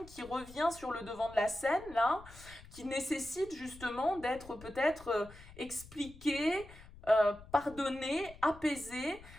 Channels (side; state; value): left; noise; rumble, 19 dB below the sound